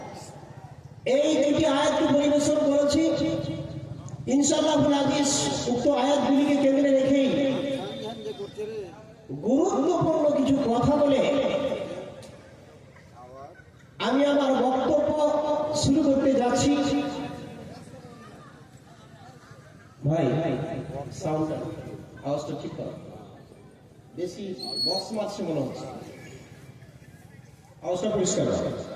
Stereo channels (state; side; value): identical; both; correlation 1.00